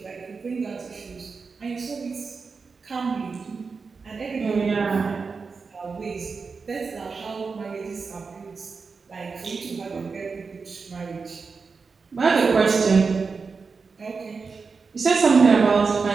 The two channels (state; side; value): quieter; left; 4.8 dB